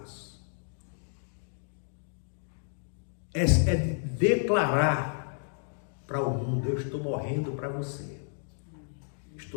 é de declarar para o mundo: eu estou morrendo para você,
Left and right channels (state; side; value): silent; right; digital silence